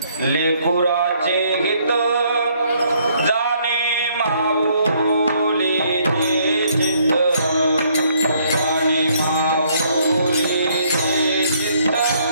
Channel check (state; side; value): inverted; both; correlation -0.67